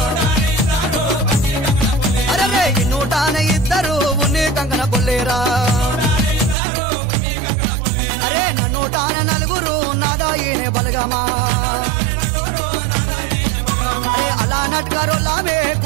అరే నూటాన ఇద్దరు ఉన్ని కంకణ పుల్లేరా అరే నూటాన నలుగురు నాదాయినే బలగమా అరే అలా నట్కరోలామే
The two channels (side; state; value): left; drops out; at 6.6 s